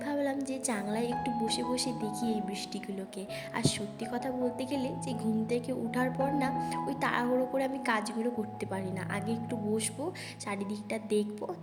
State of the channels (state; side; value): identical; both; correlation 1.00